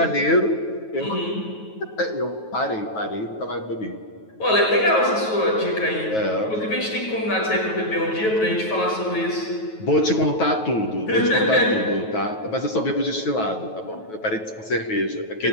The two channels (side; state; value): right; late; 9.3 ms